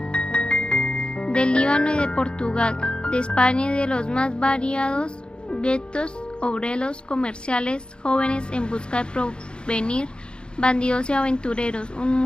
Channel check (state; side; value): late; right; 0.052 ms